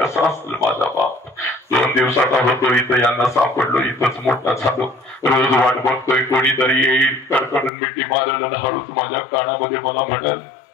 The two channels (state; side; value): drops out; right; at 7.7 s